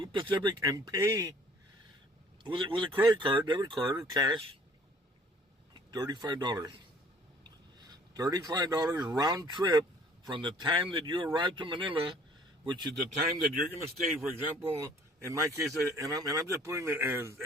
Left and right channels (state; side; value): normal; both; correlation 0.55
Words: Pacific and pay with a credit card, debit card, or cash, $35. $35 round trip from the time that you arrive to Manila, which is the time that you're going to stay. For example, in my case, and I'm just putting it